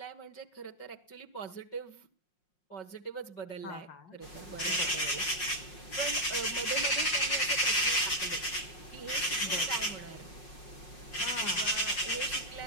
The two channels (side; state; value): right; late; 5.5 ms